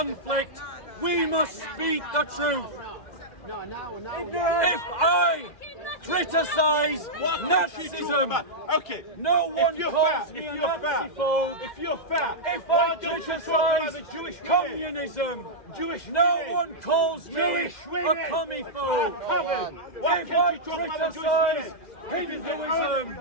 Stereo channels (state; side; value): late; right; 2.0 ms